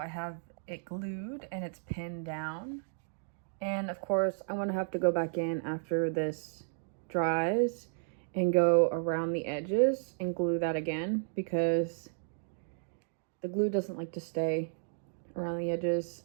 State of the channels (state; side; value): silent; left; digital silence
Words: have it glued and it's pinned down. And of course, I'm gonna have to go back in after this dries and go around the edges and glue that again because the glue doesn't like to stay around the edges.